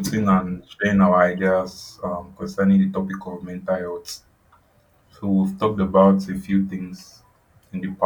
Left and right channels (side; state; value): both; identical; correlation 1.00